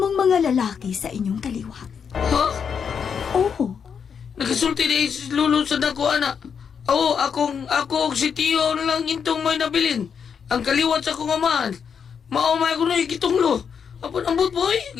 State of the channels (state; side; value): quieter; right; 6.9 dB